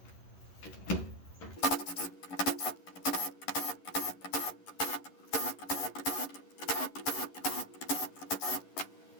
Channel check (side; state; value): right; late; 11 ms